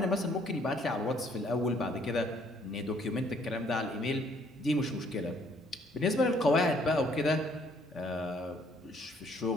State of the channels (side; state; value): both; normal; correlation 0.64